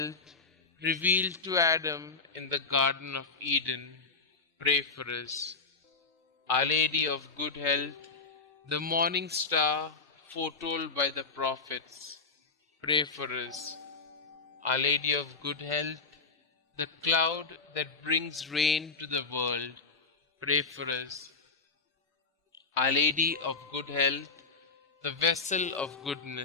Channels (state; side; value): quieter; right; 4.5 dB